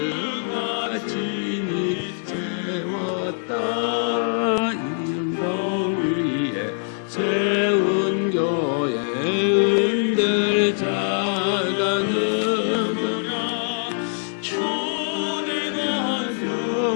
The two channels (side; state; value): right; silent; digital silence